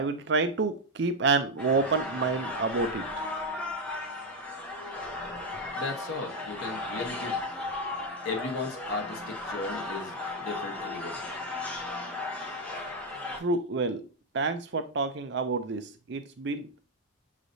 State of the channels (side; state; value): both; normal; correlation 0.04